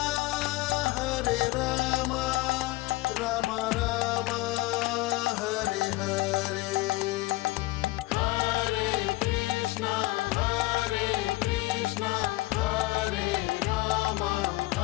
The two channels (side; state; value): right; quieter; 19.9 dB